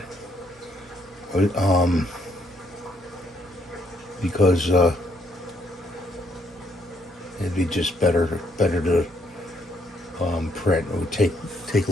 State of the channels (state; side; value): normal; both; correlation 0.71